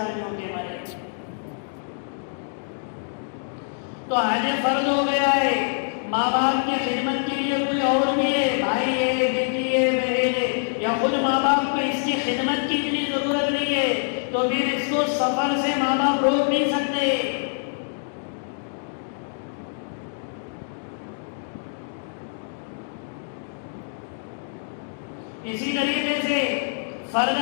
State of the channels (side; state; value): right; silent; digital silence